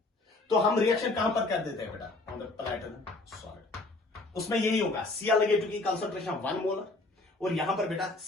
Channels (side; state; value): right; quieter; 3.1 dB